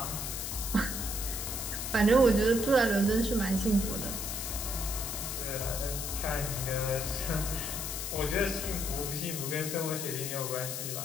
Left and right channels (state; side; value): noise; left; hiss, 4 dB below the sound